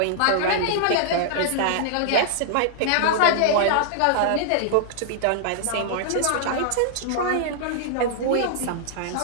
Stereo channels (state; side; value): different; both; correlation -0.01